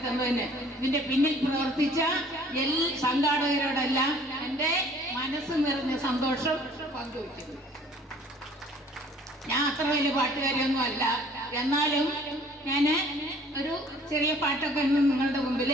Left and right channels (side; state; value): both; normal; correlation 0.54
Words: തന്നതിന് ഇതിന്റെ പിന്നിൽ പ്രവർത്തിച്ച സംഘാടകരോടെല്ലാം എൻ്റെ മനസ്സ് നിറഞ്ഞ സന്തോഷം പങ്കുവയ്ക്കുന്നു. ഞാൻ അത്ര വലിയ പാട്ടുകാരിയൊന്നും അല്ല, എന്നാലും ഞാൻ ഒരു ചെറിയ പാട്ടൊക്കെ നിങ്ങളുടെ മുമ്പിൽ